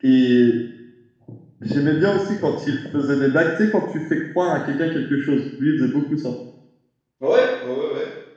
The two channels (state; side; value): identical; both; correlation 1.00